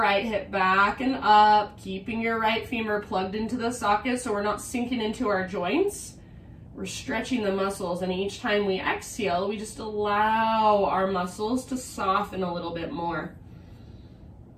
hip back and up, keeping your right femur plugged into the socket so we're not sinking into our joints. We're stretching the muscles, and each time we exhale, we just allow our muscles to soften a little bit more.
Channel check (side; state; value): both; identical; correlation 1.00